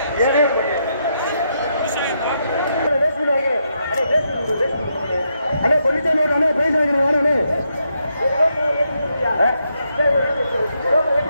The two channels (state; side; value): inverted; both; correlation -0.80